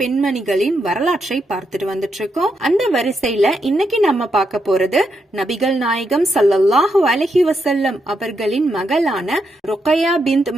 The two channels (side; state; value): both; normal; correlation 0.81